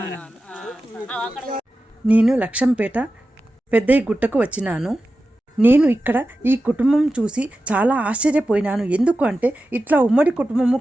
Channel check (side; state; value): both; normal; correlation 0.93